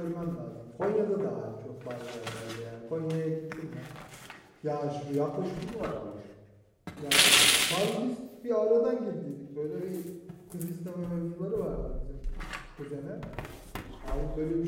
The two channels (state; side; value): identical; both; correlation 1.00